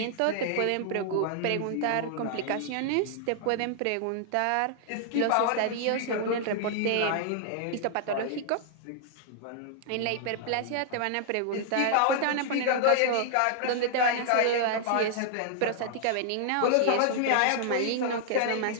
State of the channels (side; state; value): both; different; correlation -0.01